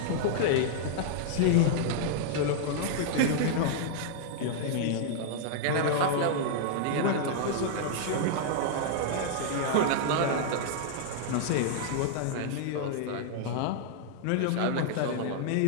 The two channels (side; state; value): both; different; correlation -0.01